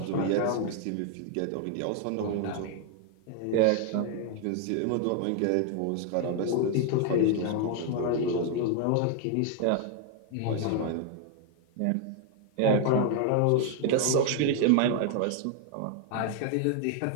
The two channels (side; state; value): both; different; correlation 0.00